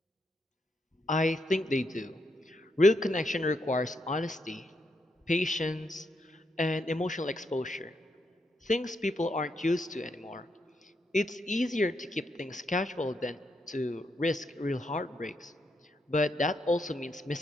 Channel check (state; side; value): normal; both; correlation 0.80